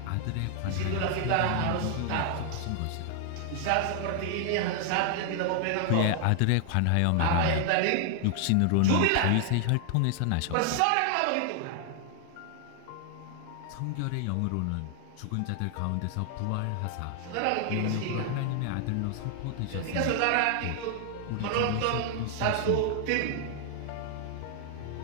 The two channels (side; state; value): both; different; correlation 0.00